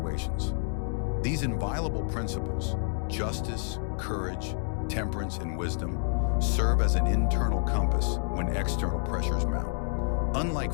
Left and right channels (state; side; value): silent; right; 59 dB below the other